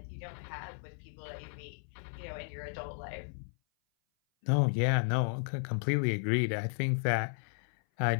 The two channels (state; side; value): silent; right; 55 dB below the other